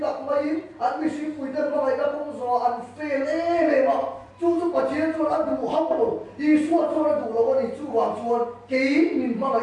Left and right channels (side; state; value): both; identical; correlation 1.00